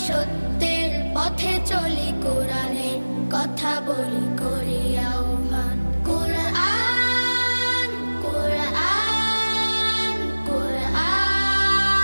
সত্যের পথে চলি, কোরআনের কথা বলি করি আহ্বান। কোরআন কোরআন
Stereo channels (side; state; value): both; inverted; correlation -1.00